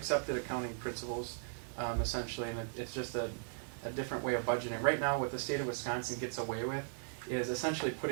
accounting principles, essentially, and it's just a different way of budgeting. Right now, what the state of Wisconsin gets away with is essentially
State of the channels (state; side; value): silent; left; 53 dB below the other